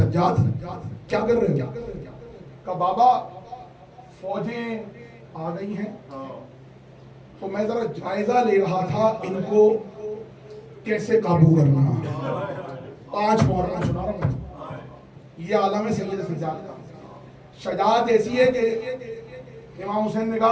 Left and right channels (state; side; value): identical; both; correlation 1.00